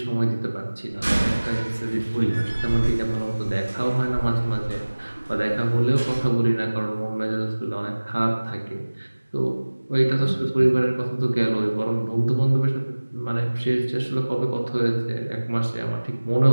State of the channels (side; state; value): both; inverted; correlation -1.00